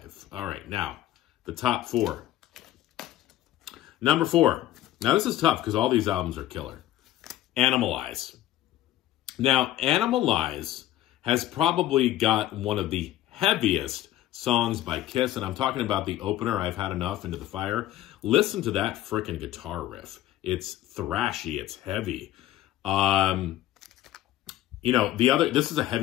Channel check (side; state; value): right; quieter; 13.9 dB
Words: All right, now, the top 4. Number 4. Now, this is tough because all these albums are killer. Animalize. Now, Animalize has probably got one of the heaviest songs by Kiss, and I'm talking about the opener, I've Had Enough, Into the Fire. Listen to that frickin' guitar riff. It's thrashy, it's heavy. You know, this is a